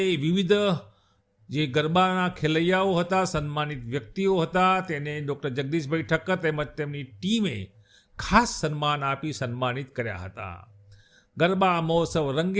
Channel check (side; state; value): both; identical; correlation 1.00